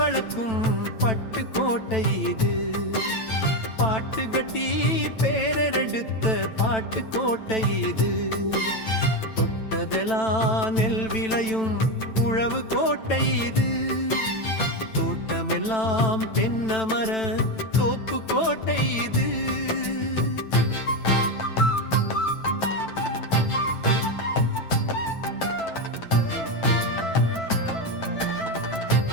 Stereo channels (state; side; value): late; right; 9.0 ms